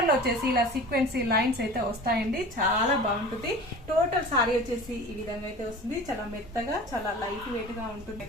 లో వచ్చేసి ఇలా సీక్వెన్సీ లైన్స్ అయితే వస్తాయండి. చాలా బాగుంటుంది. టోటల్ సారీ వచ్చేసి ఈ విధంగా అయితే వస్తుంది. చాలా మెత్తగా, చాలా లైట్ వెయిట్ గా ఉంటుంది.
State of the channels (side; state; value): both; normal; correlation 0.39